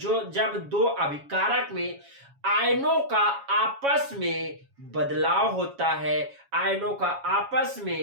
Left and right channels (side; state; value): left; late; 7.2 ms